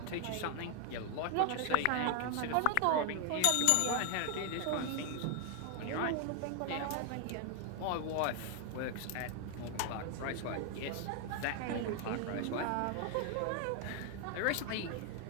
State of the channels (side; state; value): both; different; correlation 0.00